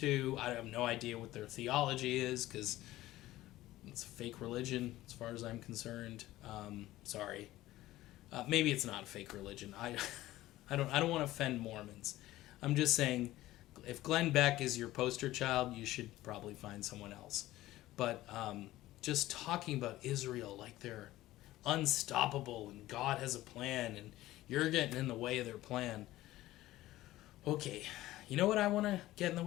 I have no idea what their theology is, because it's a fake religion as far as I'm concerned. Sorry. Maybe it's not a fake religion. I don't want to offend Mormons. I'm just saying, if Glenn Beck is your poster child, you should probably find someone else. But just talking about Israel like they're unstoppable and God has a plan and you're getting in the way of their plan. Okay, you know what I want to get in the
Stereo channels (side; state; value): right; quieter; 16.1 dB